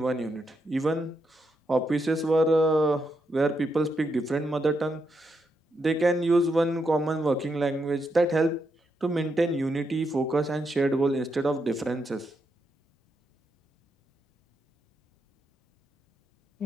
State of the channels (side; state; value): both; normal; correlation 0.81